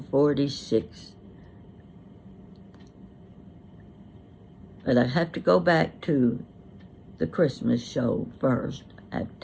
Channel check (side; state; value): both; identical; correlation 1.00